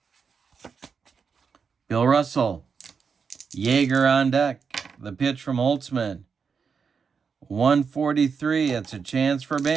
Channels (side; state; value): left; quieter; 5.9 dB